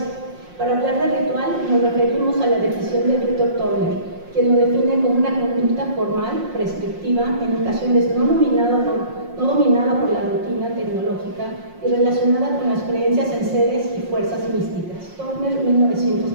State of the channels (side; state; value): left; late; 5.6 ms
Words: Para hablar de ritual nos referimos a la definición de Víctor Turner, quien lo define como una conducta formal, prescriptiva, en ocasiones no dominada por la rutina tecnológica y relacionada con las creencias en seres y fuerzas místicas. Turner,